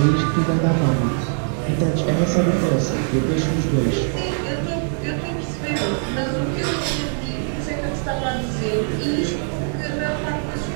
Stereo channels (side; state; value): left; silent; 56 dB below the other